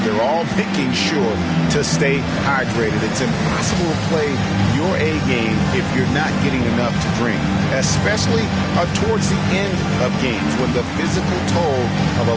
They're all making sure to stay hydrated. It's impossible to play your A game if you're not getting enough to drink, especially towards the end of games when the physical toll of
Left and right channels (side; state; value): both; identical; correlation 1.00